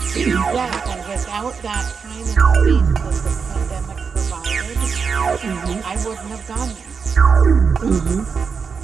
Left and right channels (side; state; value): left; quieter; 5.7 dB